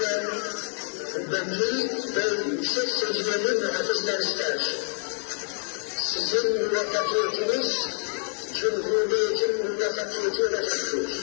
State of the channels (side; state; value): right; silent; digital silence